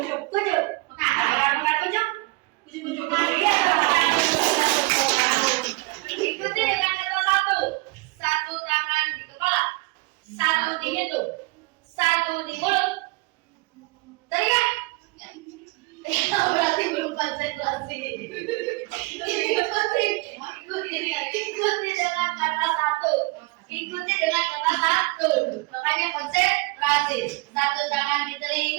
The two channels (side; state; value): left; quieter; 25.3 dB